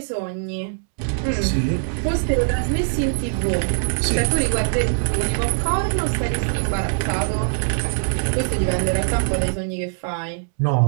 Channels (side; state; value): left; silent; 64 dB below the other